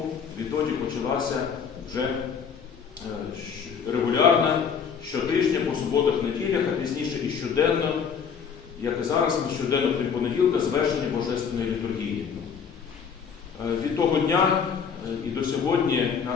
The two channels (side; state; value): right; quieter; 6.7 dB